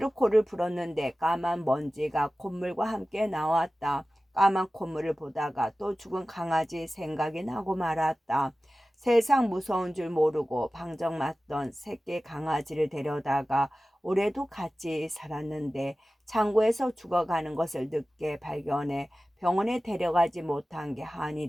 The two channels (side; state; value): both; normal; correlation 0.96